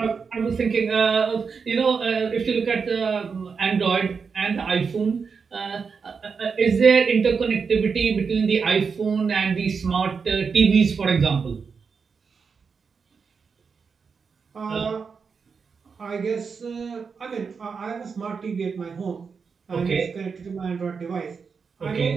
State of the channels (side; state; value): left; quieter; 5.6 dB